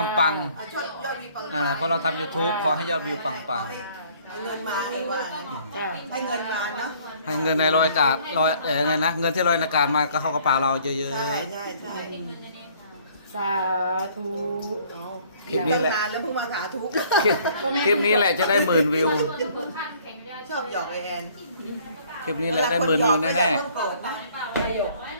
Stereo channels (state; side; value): inverted; both; correlation -0.58